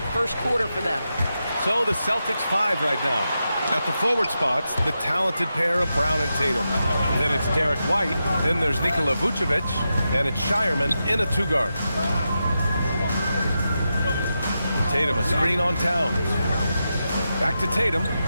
first quarter for them. So the Celtics 5 right now. At the forward spots, the talented pair of Brown and Tatum. Then it's Derek White. Then there's Nikola Vucevic. And it's Shireman in a 2-guard. Tatum, a screen on Towns. Back to Tatum.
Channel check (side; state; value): both; inverted; correlation -0.88